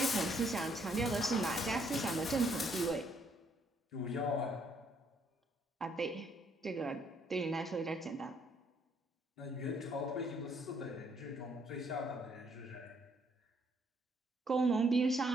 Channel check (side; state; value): both; normal; correlation 0.69